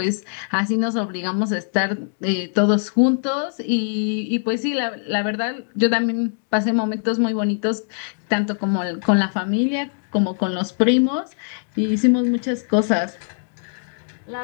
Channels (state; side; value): silent; right; digital silence